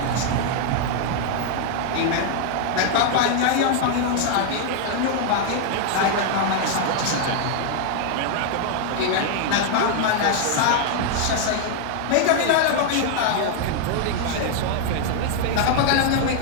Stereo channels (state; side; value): different; both; correlation 0.00